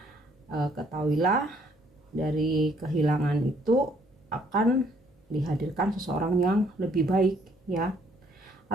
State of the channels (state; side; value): normal; both; correlation 0.65